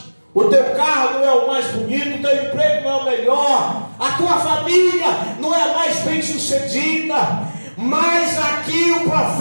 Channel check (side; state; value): both; inverted; correlation -1.00